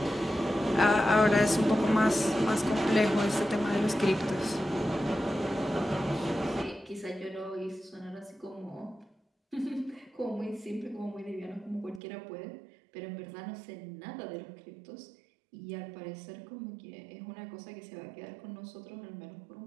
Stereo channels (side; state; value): left; drops out; at 12.0 s